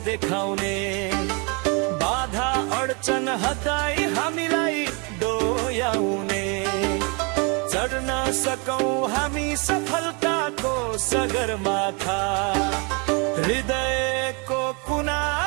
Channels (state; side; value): quieter; left; 32.6 dB